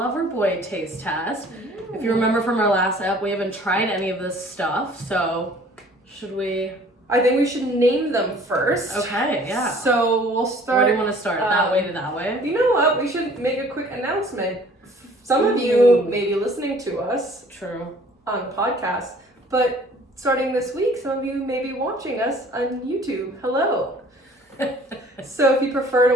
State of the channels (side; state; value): both; normal; correlation 0.53